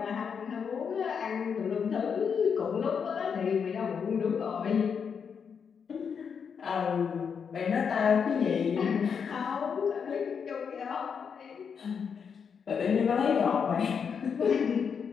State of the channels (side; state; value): right; quieter; 6.6 dB